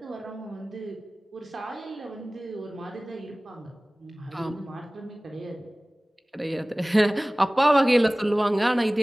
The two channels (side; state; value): both; normal; correlation 0.98